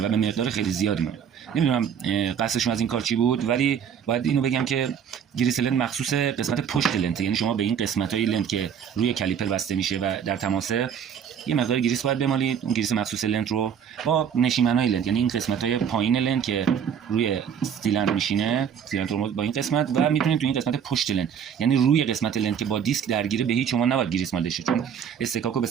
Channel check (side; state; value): left; quieter; 8.1 dB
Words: و به مقدار خیلی زیادی میمونه. نمیدونم قصدشون از این کار چی بود، ولی باید اینو بگم که گریس لنت مخصوص قسمت پشت لنت، یعنی شما به این قسمت‌های لنت که روی کالیپر بسته میشه و در تماسه یه مقدار گریس باید بمالید. اون گریس مخصوص لنت رو با نشیمن‌های لنت، یعنی این قسمت‌های پایین لنت که روی سیلندر میشینه، سیلندر ترمز با این قسمت، و میتونید تو این قسمت پشت لنت، یعنی روی قسمت لنت که با دیسک درگیره، به هیچ شما نباید گریس مالده شه، چون استکاکو به